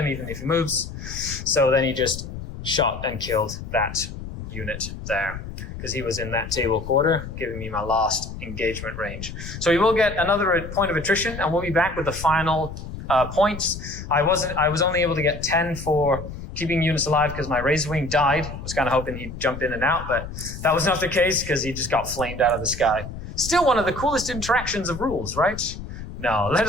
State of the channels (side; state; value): left; noise; rumble, 10 dB below the sound